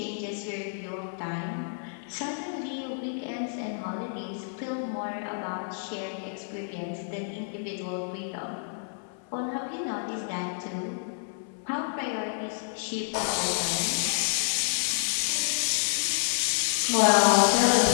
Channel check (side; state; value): right; silent; 59 dB below the other